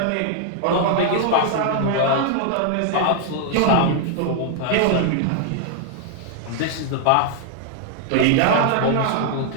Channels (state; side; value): different; both; correlation 0.00